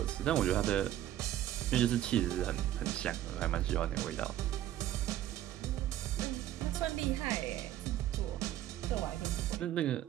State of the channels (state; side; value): quieter; left; 12.8 dB